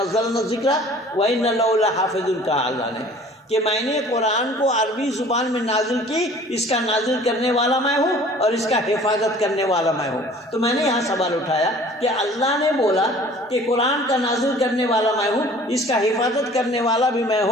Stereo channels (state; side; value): normal; both; correlation 0.49